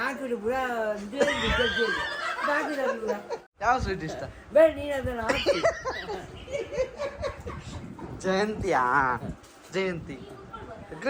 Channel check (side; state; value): both; identical; correlation 1.00